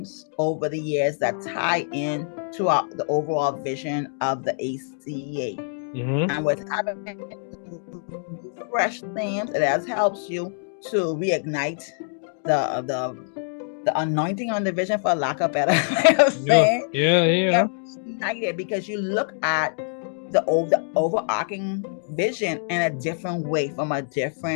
over the years that tie in to the overall vision of the ACA. And with having fresh themes, it helps you to reignite the anointing on the vision, for lack of better way of saying. Yeah. Ignited because you look at the overarching vision in a different way, from a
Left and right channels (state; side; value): silent; right; digital silence